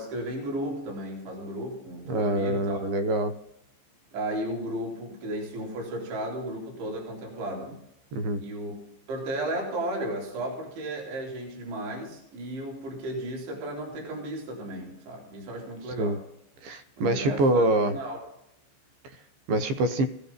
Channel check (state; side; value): late; left; 15 ms